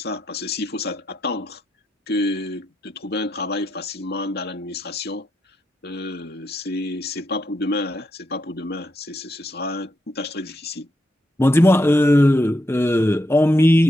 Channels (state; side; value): normal; both; correlation 0.81